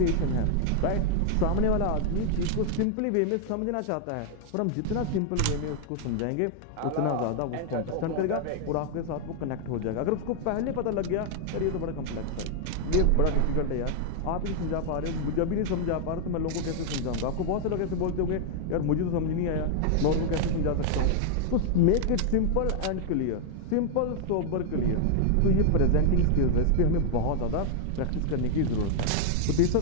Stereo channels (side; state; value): both; different; correlation 0.00